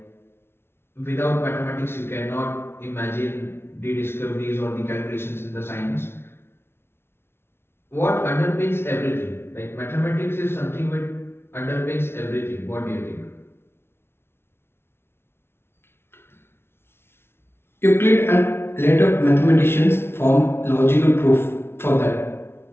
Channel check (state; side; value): late; right; 0.12 ms